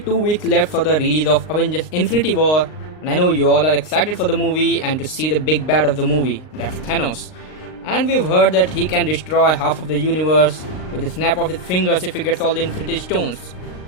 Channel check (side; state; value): right; late; 39 ms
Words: weeks left for the release of Avengers Infinity War, and I know you all are excited for the movie and to see the big bad of the movie, that's Thanos. And we've heard that he can destroy half of the universe with the snap of his fingers if he gets all the Infinity Stones.